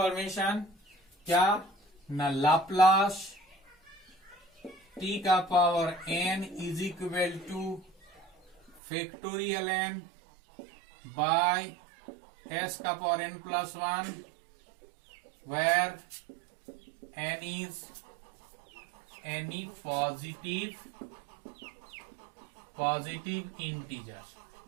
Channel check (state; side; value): drops out; left; at 8.8 s